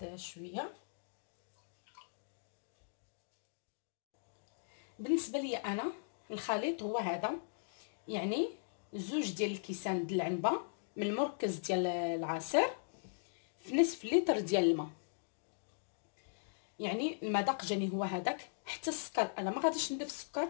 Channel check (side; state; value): right; silent; digital silence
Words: شويه. بالنسبه لي انا الخليط هو هذا، يعني 2 ديال الكيسان د العنبه من المركز ديال العصير في نصف لتر ديال الماء. يعني المذاق جاني هو هذاك. حتى السكر انا ما غاديش نضيف السكر،